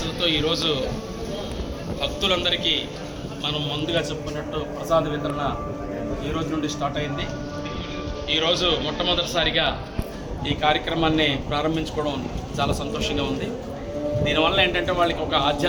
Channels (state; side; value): identical; both; correlation 1.00